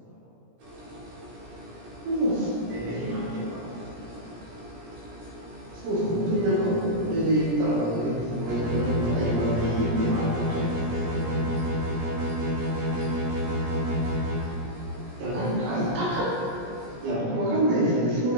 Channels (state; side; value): late; left; 17 ms